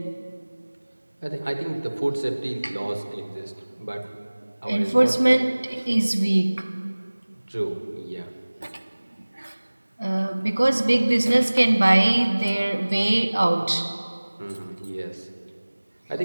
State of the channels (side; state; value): both; inverted; correlation -1.00